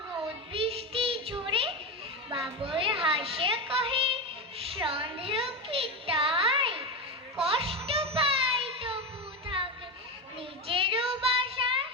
রোদ বৃষ্টি ঝরে। বাবুই হাসে কহে সন্দেহ কি তাই, কষ্ট পাই তবু থাকে নিজেরও বাসা।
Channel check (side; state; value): both; normal; correlation 0.16